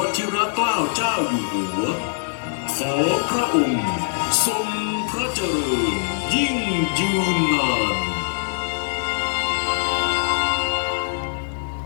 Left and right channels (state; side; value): silent; right; digital silence